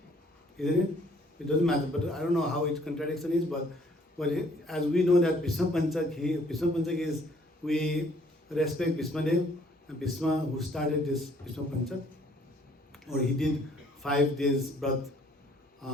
Isn't it? It doesn't matter, but I don't know how its contradiction is, but as we know that Vishwa Panchak is, we respect Bhismadev, and Bhisma who started this Vishwa Panchak, or he did 5 days birth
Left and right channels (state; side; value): normal; both; correlation 0.61